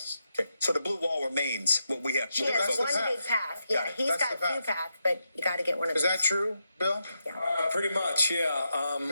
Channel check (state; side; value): inverted; both; correlation -0.85